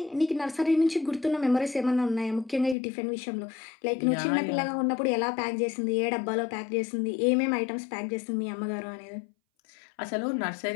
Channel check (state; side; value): drops out; right; at 2.8 s